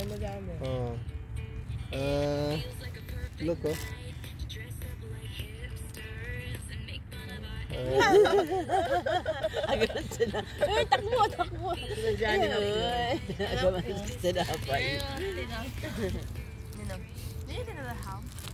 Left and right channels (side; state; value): both; identical; correlation 1.00